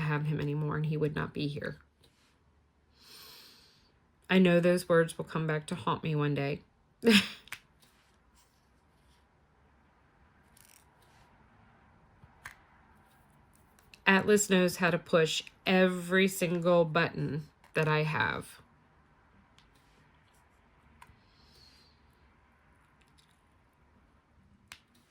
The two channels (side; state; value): both; identical; correlation 1.00